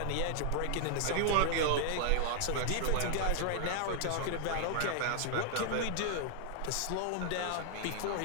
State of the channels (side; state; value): both; different; correlation 0.00